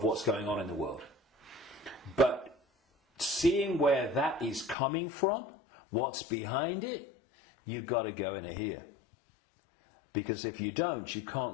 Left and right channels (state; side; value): drops out; right; at 4.8 s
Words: what's going on in the world. But seeing where that is coming from, what's behind it, you've got to go in here. Because if you don't, you